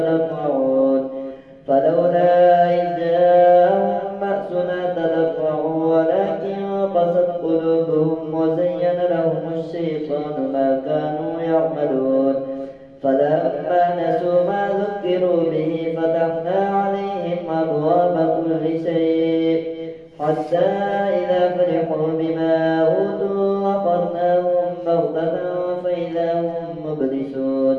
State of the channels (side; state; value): both; identical; correlation 1.00